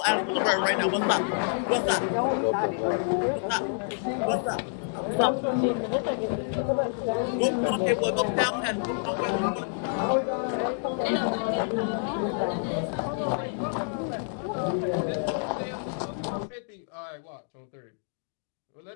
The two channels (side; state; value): right; silent; digital silence